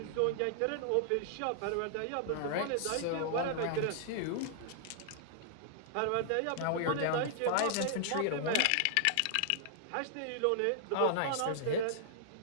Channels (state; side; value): different; both; correlation -0.01